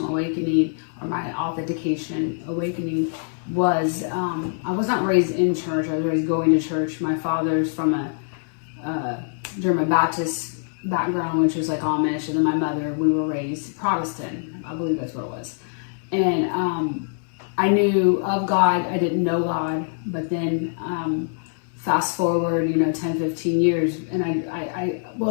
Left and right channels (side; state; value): right; silent; 61 dB below the other